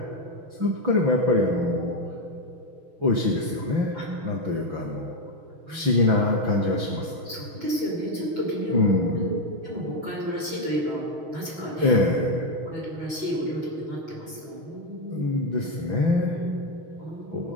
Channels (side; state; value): left; late; 5.9 ms